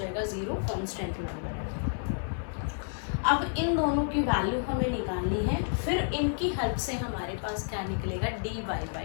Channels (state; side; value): silent; right; 56 dB below the other